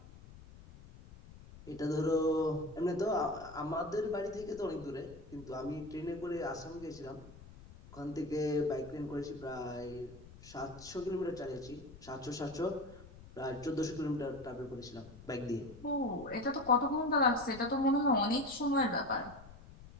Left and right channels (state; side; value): noise; left; rumble, 18 dB below the sound